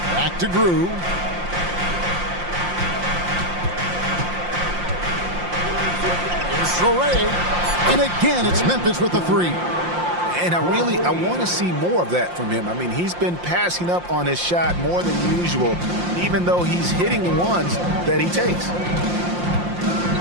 to Grew. Here's Traore. And again, it's Memphis with the three. And I want to see more of that from him. I mean, he's been passing up on his shot more than usual, even though he's hitting the ones that he takes.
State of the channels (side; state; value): left; late; 5.7 ms